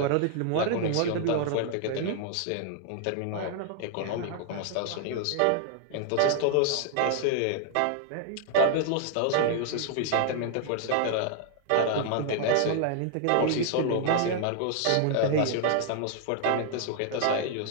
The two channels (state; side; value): different; both; correlation 0.00